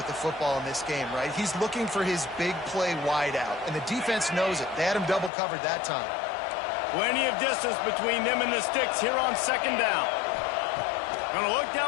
the football in this game, right? He's looking for his big play wide out, and the defense knows it. They had him double covered that time. Plenty of distance between them and the sticks here on second down. Going to look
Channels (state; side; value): drops out; right; at 5.3 s